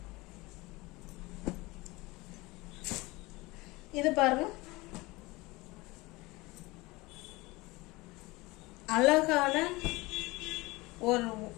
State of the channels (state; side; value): quieter; right; 22.4 dB